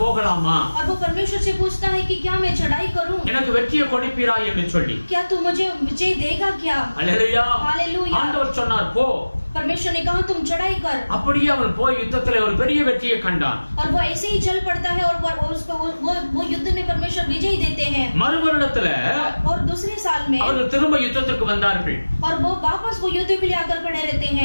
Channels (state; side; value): inverted; both; correlation -1.00